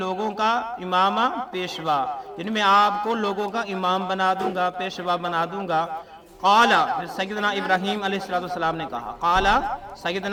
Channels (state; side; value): identical; both; correlation 1.00